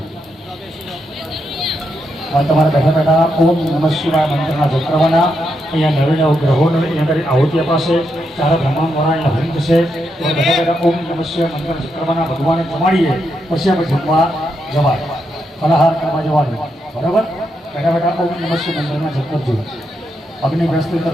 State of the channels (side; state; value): both; normal; correlation 0.82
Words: और तुम्हारा बैठा बैठा ओम नमः शिवाय मंत्र जप करवाना अँ नवीन ग्रहों आहुति अपाशे चार ब्रह्मांडवाळा हरित से बैठा बैठा ओम नमः शिवाय मंत्र जप करवाना भगवान जमाड़ीए पछी आप जमवा जवाय फलाहार करवा जवाय बराबर बैठा बैठा ओम नमः शिवाय मंत्र जप करजो अग्नि प्रस्तुत